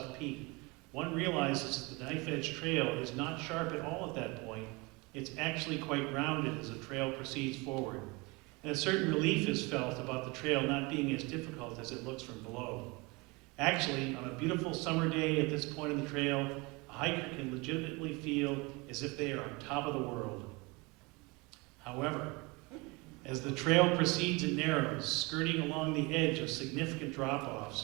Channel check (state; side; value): quieter; left; 26.3 dB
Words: Peak, one realizes that the Knife Edge Trail is not sharp at all at that point. It's actually quite rounded as the trail proceeds forward. And a certain relief is felt about the trail not being as difficult as it looks from below. Actually, on a beautiful summer day at this point in the trail, a hiker can legitimately feel as if they are on top of the world. However, as the trail proceeds and narrows, skirting along the edge of significant